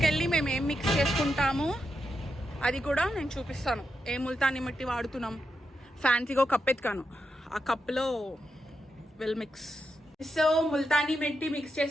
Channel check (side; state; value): both; normal; correlation 0.85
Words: మేము ఏం మిక్స్ చేసుకుంటాము అది కూడా నేను చూపిస్తాను. ఏ ముల్తానీ మట్టి వాడుతున్నాం. ఫ్యాన్సీగా ఒక కప్ ఎత్తుకాను, ఆ కప్లో well mix. So Multani mitti mix